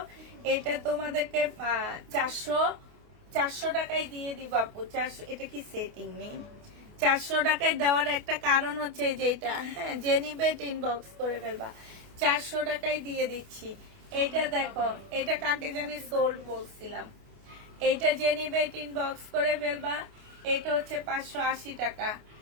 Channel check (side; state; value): left; late; 28 ms